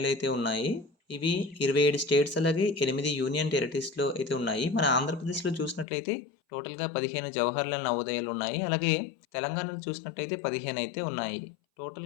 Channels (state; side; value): drops out; right; at 5.9 s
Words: అయితే ఉన్నాయి. ఇవి 27 స్టేట్స్ అలాగే 8 యూనియన్ టెరిటరీస్లో అయితే ఉన్నాయి. మన ఆంధ్రప్రదేశ్లో చూసినట్లయితే టోటల్గా 15 జవహర్లాల్ నవోదయాలు ఉన్నాయి. అలాగే తెలంగాణలో చూసినట్లయితే 15 అయితే ఉన్నాయి.